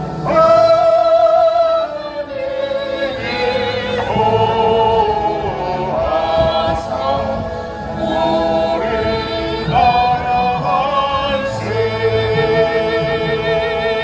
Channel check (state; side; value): identical; both; correlation 1.00